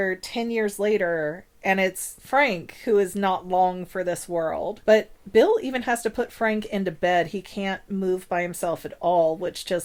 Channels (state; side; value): identical; both; correlation 1.00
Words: 10 years later, and it's Frank who is not long for this world. But Bill even has to put Frank into bed. He can't move by himself at all, which